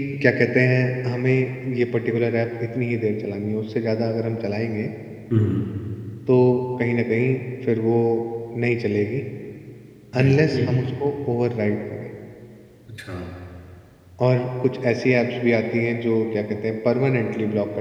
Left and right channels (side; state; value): both; identical; correlation 1.00